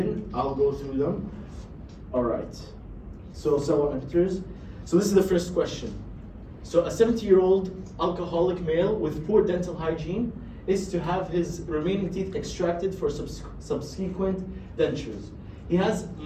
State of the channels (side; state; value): both; identical; correlation 1.00